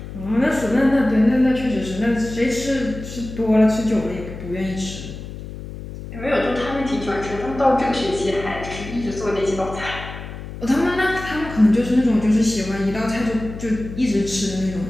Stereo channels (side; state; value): left; noise; hum, 11 dB below the sound